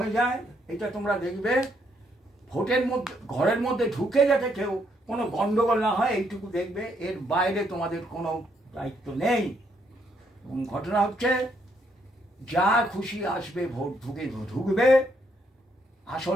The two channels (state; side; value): normal; both; correlation 0.73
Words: যায়, এটা তোমরা দেখবে। ভোটের মধ্যে, ঘরের মধ্যে ঢুকে যাতে কেউ কোনো গন্ডগোল না হয়, এইটুকু দেখবে। এর বাইরে তোমাদের কোনো দায়িত্ব নেই। এবং ঘটনা হচ্ছে, যা খুশি আসবে ভোট ঢুকবে,